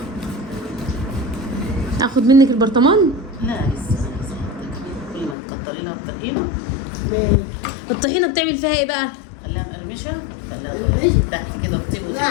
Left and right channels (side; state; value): right; drops out; at 5.4 s